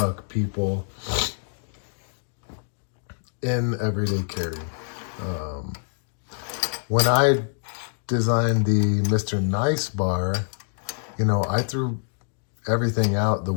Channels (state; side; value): silent; right; digital silence